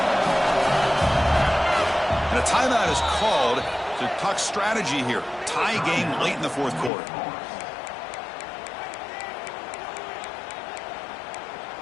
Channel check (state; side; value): drops out; right; at 6.9 s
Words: And a timeout is called to talk strategy here. Tie game late in the 4th quarter.